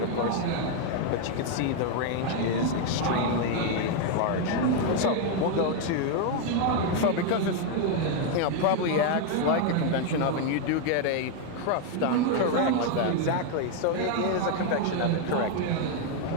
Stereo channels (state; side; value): different; both; correlation 0.01